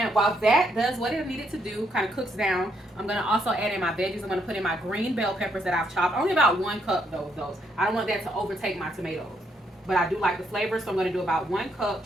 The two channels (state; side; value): normal; both; correlation 0.74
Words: while that does what it needed to do, kind of cooks down, I'm going to also add in my veggies. I'm going to put in my green bell peppers that I've chopped. Only about 1 cup though of those. I don't want that to overtake my tomatoes, but I do like the flavor, so I'm going to do about 1 cup